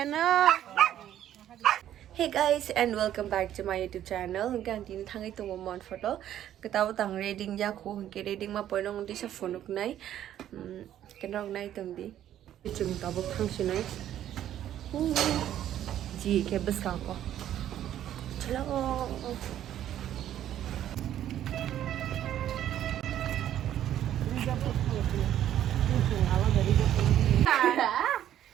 guys and welcome back to my YouTube channel. Hinggang tin thangai tumo mon photo. Ketawa tang reading ja ko hingke reading ma poinong di sa phone nai. Kenong nai tumdi. Chung tabuk thangsi nai. Ji ke bus ka ko. Chalo.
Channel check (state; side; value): quieter; left; 11.4 dB